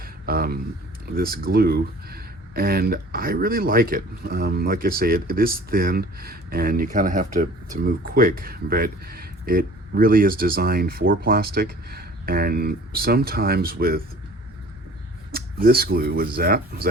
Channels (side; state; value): both; normal; correlation 0.48